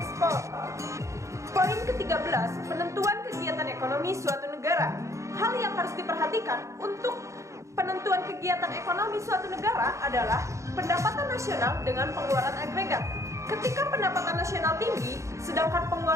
Poin ke-13, penentuan kegiatan ekonomi suatu negara. Hal yang harus diperhatikan untuk penentuan kegiatan ekonomi suatu negara adalah pendapatan nasional dengan pengeluaran agregat. Ketika pendapatan nasional tinggi, sedangkan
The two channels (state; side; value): late; left; 0.15 ms